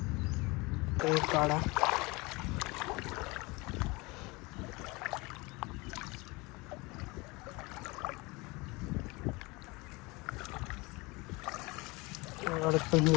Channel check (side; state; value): right; quieter; 24.8 dB